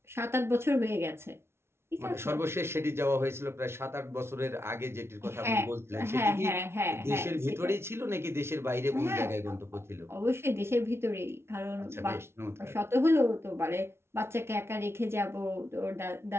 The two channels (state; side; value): late; left; 0.12 ms